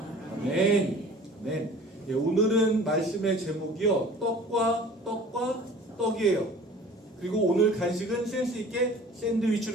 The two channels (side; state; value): both; normal; correlation 0.46